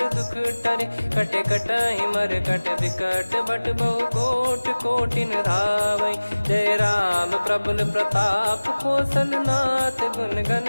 दुख टरे, कटे कटहि मर कट विकट बट बहु कोट कोटिन धावै। जय राम प्रबल प्रताप कौशलनाथ गुण गण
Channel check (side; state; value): both; inverted; correlation -1.00